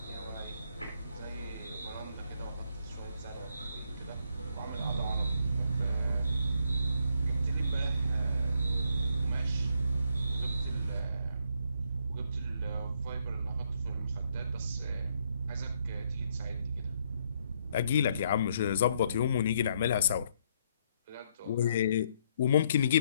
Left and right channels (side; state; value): both; inverted; correlation -0.72